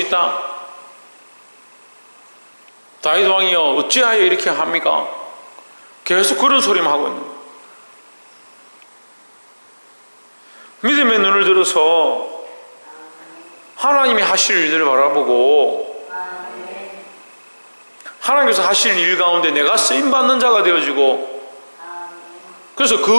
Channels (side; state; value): both; inverted; correlation -1.00